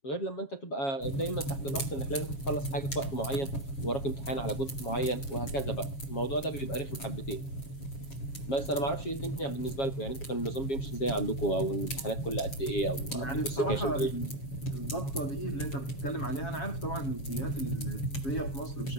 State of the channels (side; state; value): right; late; 7.3 ms